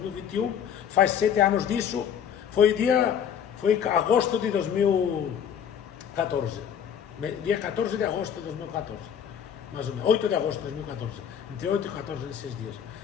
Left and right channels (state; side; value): quieter; right; 8.4 dB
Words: faz 7 anos disso, foi agosto de 2014, dia 14 de agosto de 2014, mais ou menos, 8 de agosto de 2014, entre 8 e 14 nesses dias.